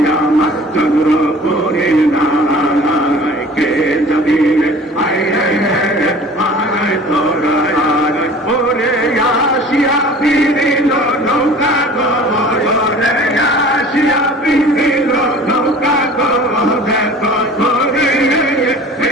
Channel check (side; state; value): both; normal; correlation 0.45